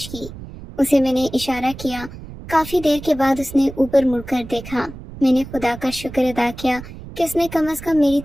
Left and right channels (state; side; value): noise; right; rumble, 14 dB below the sound